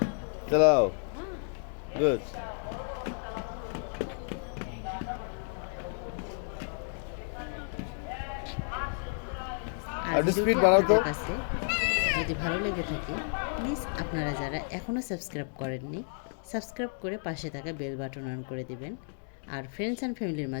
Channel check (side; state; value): right; silent; 57 dB below the other